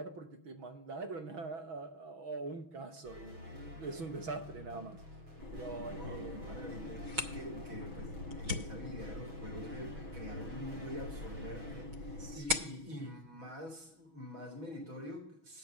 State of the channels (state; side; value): late; left; 6.2 ms